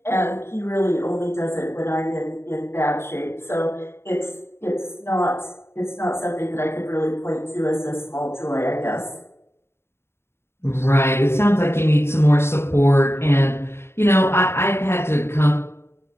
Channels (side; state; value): right; late; 0.12 ms